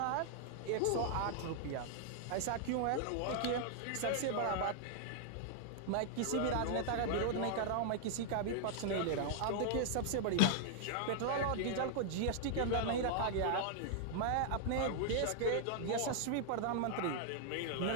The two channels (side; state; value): both; different; correlation 0.00